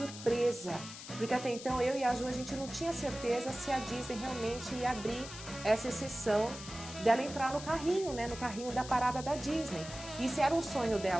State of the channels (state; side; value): noise; left; hiss, 12 dB below the sound